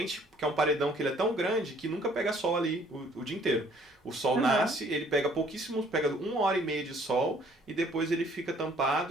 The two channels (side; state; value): both; normal; correlation 0.59